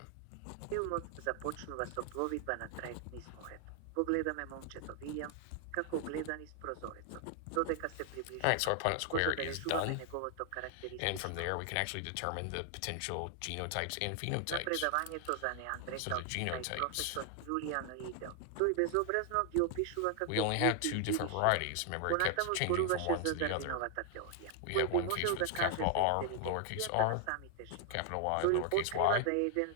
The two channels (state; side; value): different; both; correlation 0.00